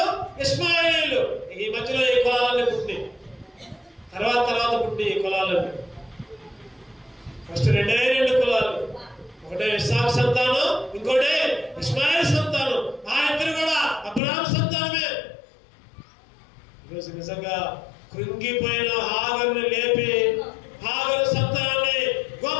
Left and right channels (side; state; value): right; drops out; at 14.2 s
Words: ఇస్మాయేలీలు ఈ మధ్యలో ఈ కులాలన్నీ పుట్టి తర్వాత పుట్టి ఈ కులాలన్నీ. ఫస్ట్ 2 కులాలు, ఒకటే ఇస్సాకు సంతానం, ఇంకోటే ఇస్మాయిల్ సంతానం. ఆ ఇద్దరు కూడా అబ్రహాము సంతానమే. ఈరోజు నిజంగా కృంగిపోయిన హాగరుని లేపి హాగరు సంతానాన్ని